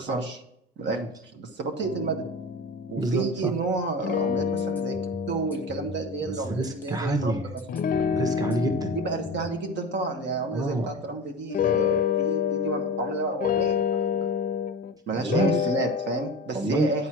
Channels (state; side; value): normal; both; correlation 0.31